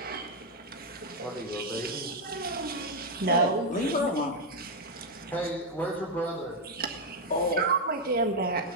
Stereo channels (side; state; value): both; normal; correlation 0.01